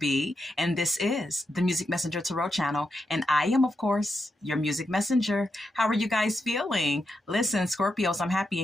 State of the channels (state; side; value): normal; both; correlation 0.85